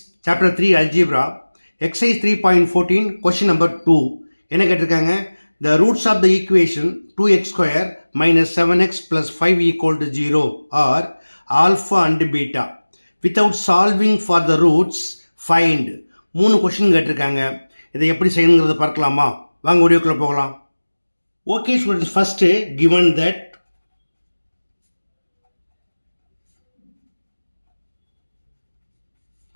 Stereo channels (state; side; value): inverted; both; correlation -1.00